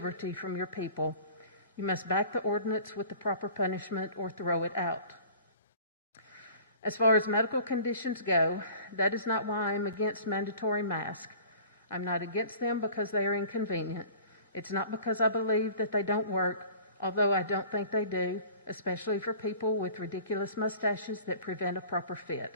from your people. You must back the ordinance with the proper punishment or throw it out. As far as medical conditions go, that is not why I'm against mandatory masks. I'm not against them because they are inconvenient. It's not because I believe that they don't work, although I don't think they do, especially for people with ridiculous mustaches that prevent a proper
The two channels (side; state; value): both; inverted; correlation -0.46